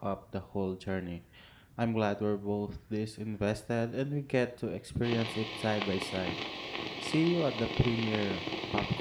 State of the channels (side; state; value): both; identical; correlation 1.00